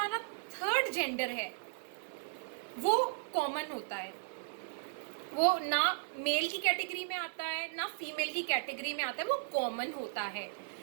थर्ड जेंडर है वो कॉमन होता है. वो ना मेल की कैटेगरी में आता है ना फीमेल की कैटेगरी में आता है, वो कॉमन होता है.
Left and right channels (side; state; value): left; silent; digital silence